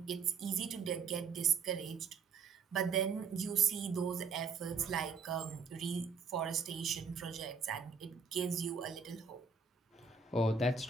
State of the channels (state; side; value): quieter; left; 5.3 dB